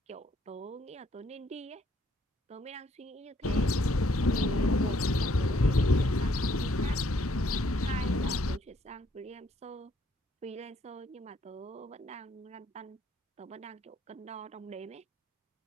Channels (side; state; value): both; normal; correlation 0.68